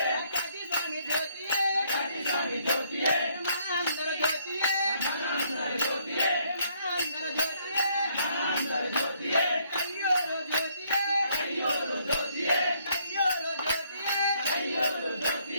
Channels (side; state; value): both; inverted; correlation -0.67